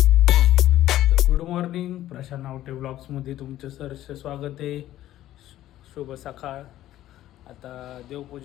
गुड मॉर्निंग, प्रशांत नावटे ब्लॉग्समध्ये तुमचं सहर्ष स्वागत आहे. शुभ सकाळ. आता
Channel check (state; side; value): quieter; right; 13.7 dB